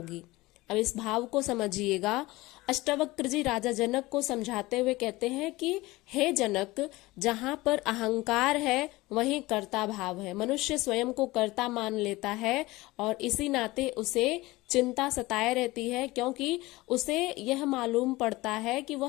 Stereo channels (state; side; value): quieter; right; 20.1 dB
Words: अब इस भाव को समझिएगा। अष्टावक्र जी राजा जनक को समझाते हुए कहते हैं कि हे जनक, जहां पर अहंकार है वहीं कर्ता भाव है। मनुष्य स्वयं को कर्ता मान लेता है और इसी नाते उसे चिंता सताए रहती है, क्योंकि उसे यह मालूम पड़ता है कि